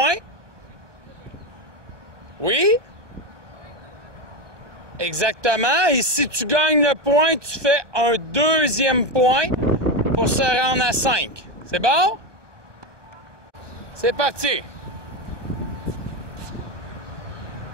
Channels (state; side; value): late; left; 1.2 ms